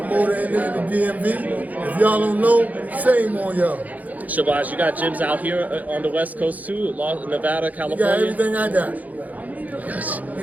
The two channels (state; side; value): late; left; 0.078 ms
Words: in the DMV. If y'all don't know, shame on y'all. Shabazz, you got gyms out here on the West Coast too, Nevada, California? You got everything I got. Gotcha.